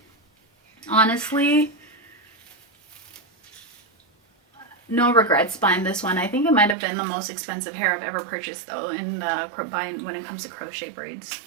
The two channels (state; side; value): drops out; left; at 6.8 s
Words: honestly no regrets buying this one. I think it might have been the most expensive hair I've ever purchased though in buying when it comes to crochet